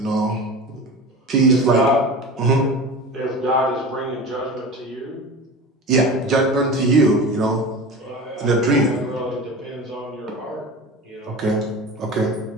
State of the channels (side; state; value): both; normal; correlation 0.32